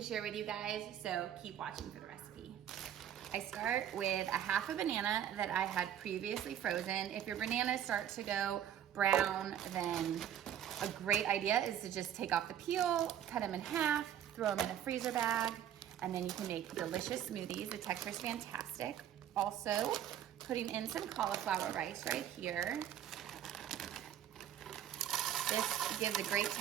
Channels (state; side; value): quieter; left; 10.3 dB